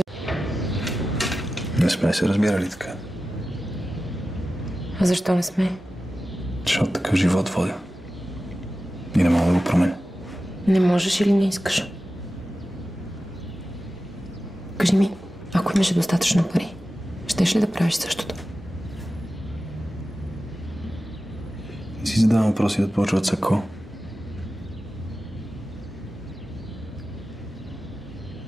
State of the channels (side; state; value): both; normal; correlation 0.94